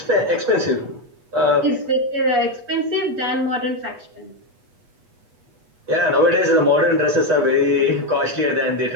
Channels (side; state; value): left; late; 8.2 ms